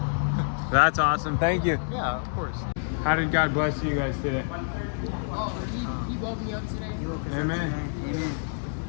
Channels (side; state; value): right; silent; digital silence